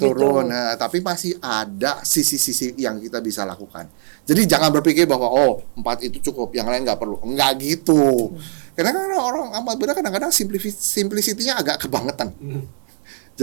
turun. Nah, tapi masih ada sisi-sisi yang kita bisa lakukan. Jadi jangan berpikir bahwa 4 itu cukup, yang lain nggak perlu. Enggak gitu. Karena orang amat beda kadang-kadang simplicity-nya agak kebangetan.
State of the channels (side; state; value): left; silent; digital silence